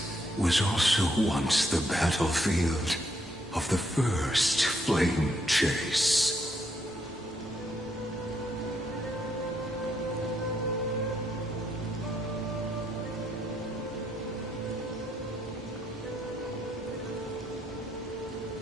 was also once the battlefield of the first flame chase.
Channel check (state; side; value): normal; both; correlation 0.74